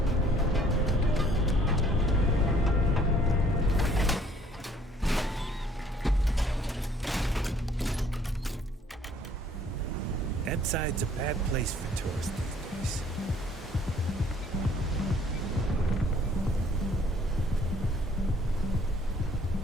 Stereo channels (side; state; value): both; normal; correlation 0.60